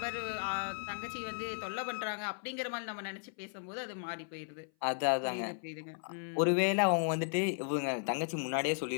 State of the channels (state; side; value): silent; right; 54 dB below the other